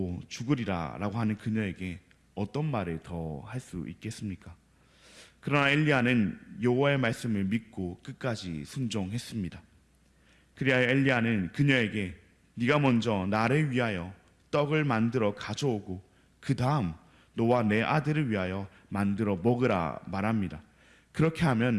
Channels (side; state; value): both; identical; correlation 1.00